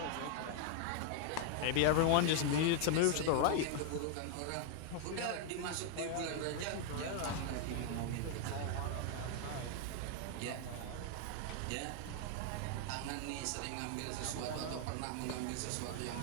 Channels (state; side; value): different; both; correlation 0.00